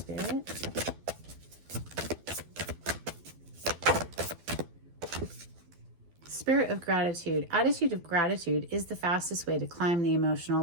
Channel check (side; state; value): left; late; 12 ms